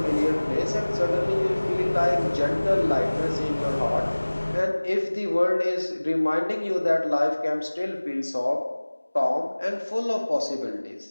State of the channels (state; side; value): inverted; both; correlation -1.00